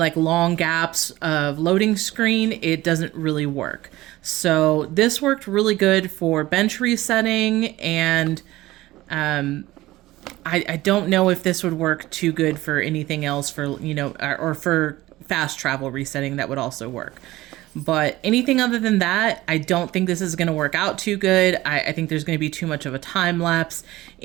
long gaps of loading screen, it doesn't really work. So this worked really good for bench resetting, and I don't know if this would work too good for anything else, for, you know, or for fast travel resetting. That would also work. But anything other than that, I don't think this is going to work out too good. I think there's going to be too much of a time lapse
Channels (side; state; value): left; quieter; 17.5 dB